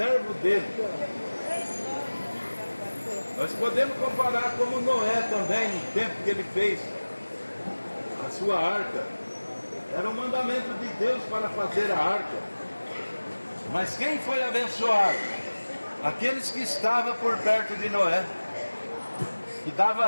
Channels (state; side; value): inverted; both; correlation -1.00